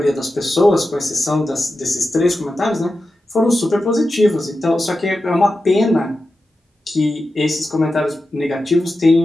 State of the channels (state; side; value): normal; both; correlation 0.91